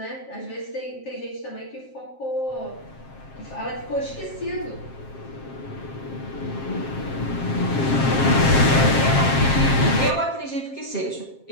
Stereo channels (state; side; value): late; right; 7.5 ms